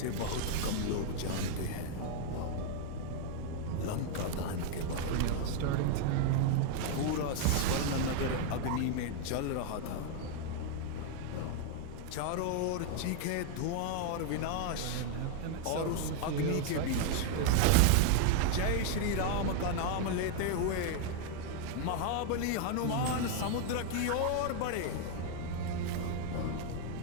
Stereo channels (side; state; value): both; different; correlation 0.00